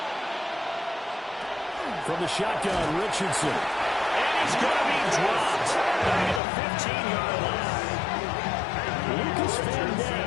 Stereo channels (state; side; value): drops out; right; at 6.4 s